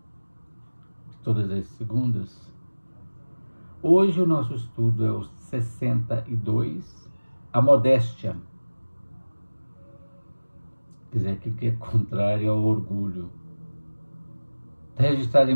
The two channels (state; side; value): inverted; both; correlation -1.00